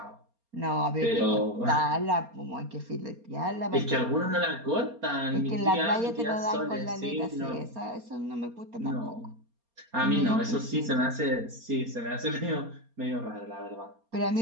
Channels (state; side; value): late; left; 4.3 ms